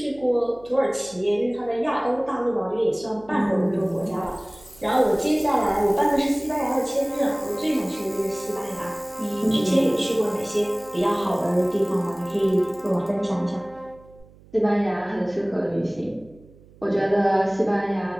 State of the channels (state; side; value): noise; right; hum, 25 dB below the sound